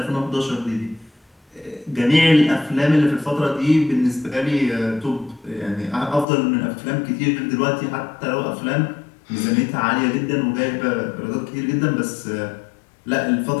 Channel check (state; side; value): drops out; right; at 6.2 s